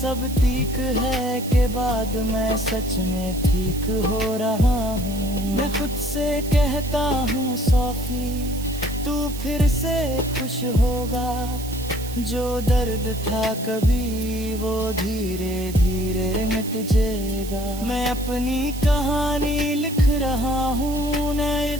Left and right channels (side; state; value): right; noise; hiss, 13 dB below the sound